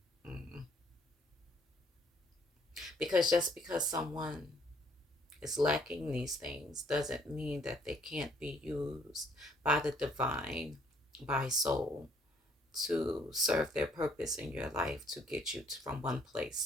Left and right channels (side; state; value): both; normal; correlation 0.64